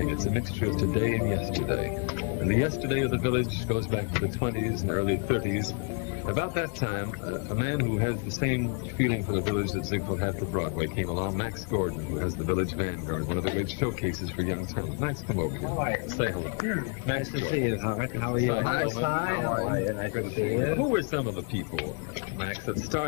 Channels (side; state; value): right; quieter; 35.2 dB